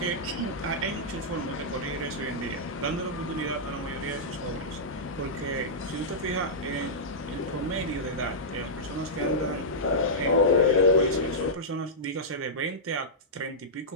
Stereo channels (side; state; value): both; normal; correlation -0.12